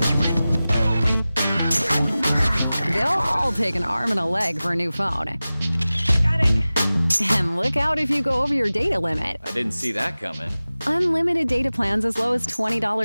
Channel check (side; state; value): both; inverted; correlation -0.97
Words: They'll all take an arm and a leg for a new phone. got it. And look out if you go over your data limit. I didn't see that coming. Unlimited data plans as low as